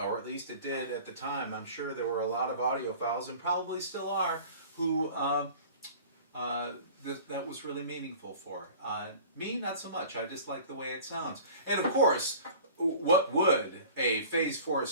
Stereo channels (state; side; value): inverted; both; correlation -0.43